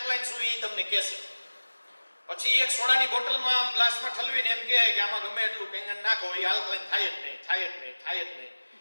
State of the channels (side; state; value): both; inverted; correlation -1.00